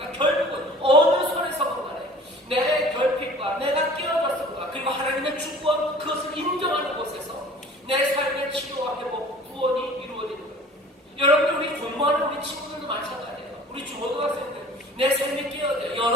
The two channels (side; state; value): both; normal; correlation 0.46